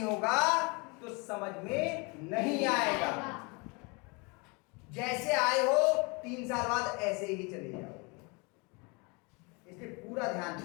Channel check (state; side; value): quieter; right; 29.8 dB